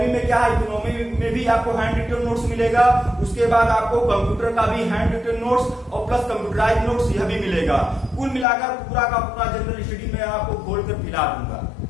में क्या है, इकोनॉमी में भी आपको हैंड रिटेन नोट्स मिलेगा। उसके बाद आपको कंप्यूटर का भी हैंड रिटेन नोट्स और प्लस कंप्यूटराइज नोट्स यह भी मिलेगा। कुल मिलाकर पूरा का पूरा जनरल स्टडी में आपको खोल कर पिला दूंगा,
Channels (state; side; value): drops out; right; at 8.5 s